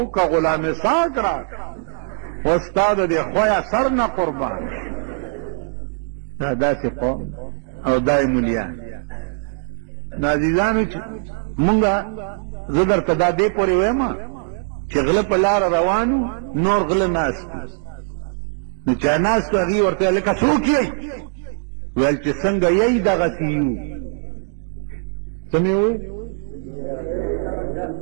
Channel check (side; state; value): left; silent; digital silence